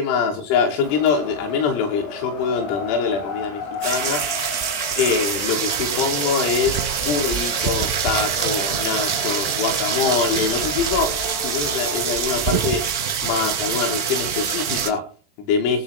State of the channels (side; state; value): right; late; 20 ms